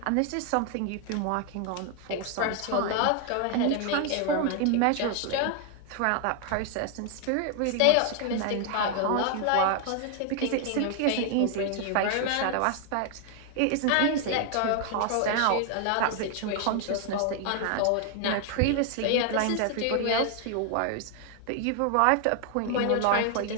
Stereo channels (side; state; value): both; different; correlation 0.00